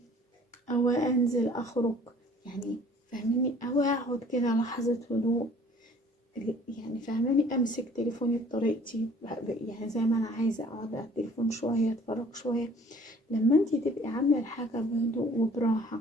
أو أنزل أخرج. يعني فاهميني؟ أو أقعد كده لحظة هدوء، يعني فاهماني؟ امسك تليفوني بطريقتي، يعني زي ما انا عايزه اقعد على التليفون شويه، اتفرج شويه. لما انتي تبقي عامله الحاجه بهدوء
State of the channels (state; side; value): normal; both; correlation 0.53